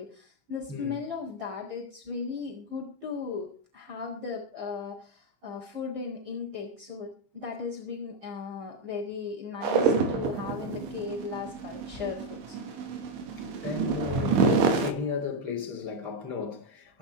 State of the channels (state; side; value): late; left; 15 ms